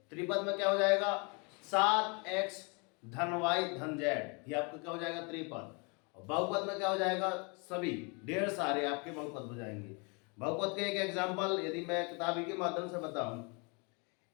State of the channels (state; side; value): quieter; right; 32.5 dB